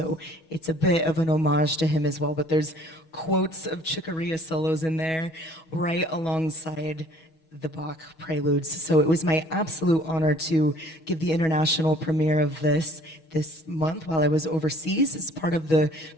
it's a bit of an homage to him as well, but there's quotes of Chick Corea solos in there right alongside the Bach preludes. So it was my absolute honor to give the international premiere of this month while I was overseas as part of the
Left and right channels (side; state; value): right; late; 6.2 ms